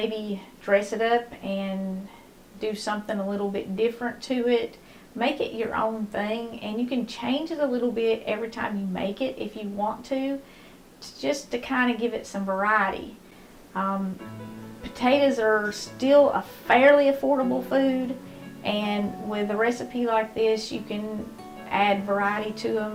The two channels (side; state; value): both; identical; correlation 1.00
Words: dress it up and do something a little bit different to it. Make it your own thing, and you can change it a little bit every time you make it if you want to, just to kind of give it some variety. Potatoes are still a fairly affordable food, and with a recipe like this, you can add variety to